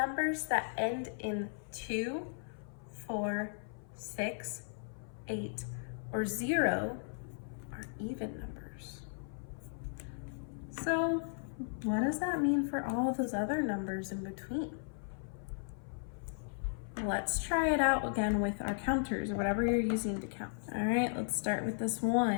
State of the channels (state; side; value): silent; right; 54 dB below the other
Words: that end in 2, 4, 6, 8, or 0 are even numbers. So what does that mean for all of those other numbers in between? Let's try it out again with our counters or whatever you're using to count. All right, let's start with this